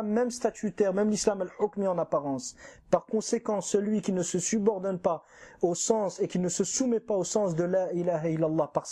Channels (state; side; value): identical; both; correlation 1.00